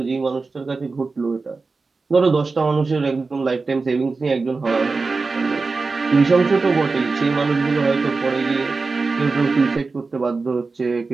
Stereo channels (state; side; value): quieter; left; 4.1 dB